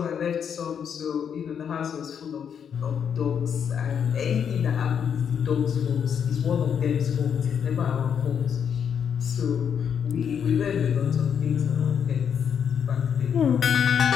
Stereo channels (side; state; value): right; quieter; 7.7 dB